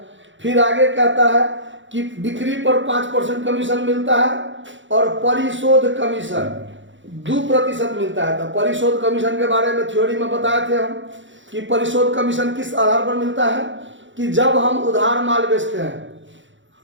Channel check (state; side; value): late; left; 0.55 ms